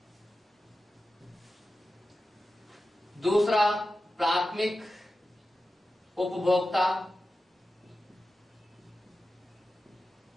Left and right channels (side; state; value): both; normal; correlation 0.93